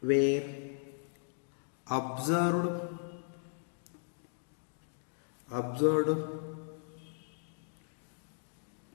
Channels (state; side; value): silent; right; digital silence